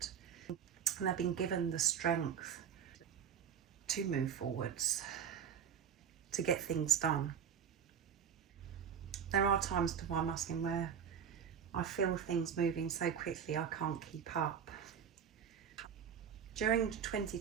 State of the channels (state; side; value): quieter; left; 7.9 dB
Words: And they've been given the strength to move forwards, to get things done. There are times, Divine Masculine, where I feel things moving so quickly I can't keep up. During